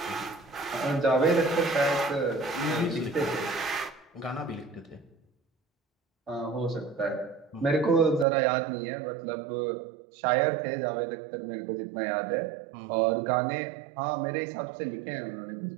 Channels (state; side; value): drops out; left; at 8.2 s